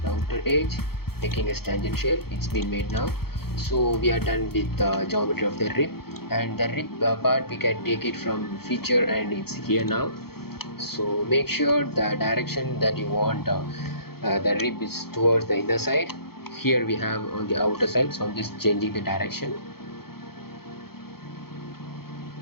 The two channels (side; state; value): right; late; 0.95 ms